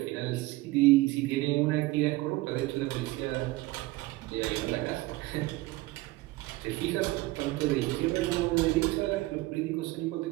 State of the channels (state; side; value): quieter; left; 19.9 dB